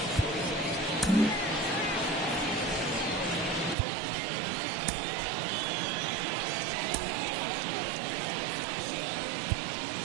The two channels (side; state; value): left; drops out; at 3.8 s